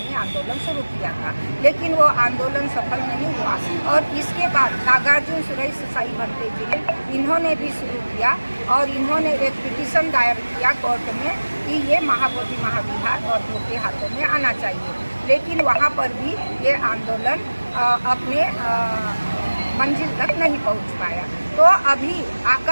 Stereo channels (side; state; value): both; inverted; correlation -1.00